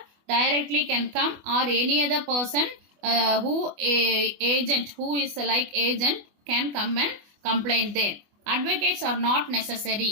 directly can come, or any other person agent who is like agent can come and complain there. Advocates are not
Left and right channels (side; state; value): left; late; 24 ms